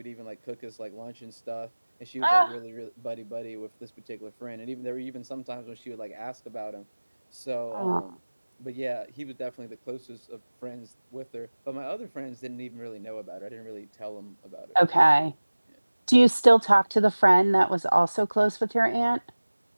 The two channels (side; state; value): both; inverted; correlation -1.00